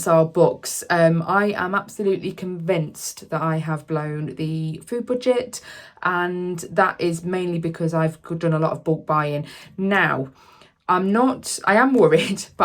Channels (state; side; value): identical; both; correlation 1.00